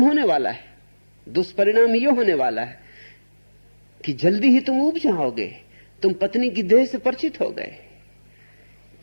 होने वाला है। दुष्परिणाम यह होने वाला है कि जल्दी ही तुम उब जाओगे। तुम पत्नी की देह से परिचित हो गए।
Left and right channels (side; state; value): both; inverted; correlation -1.00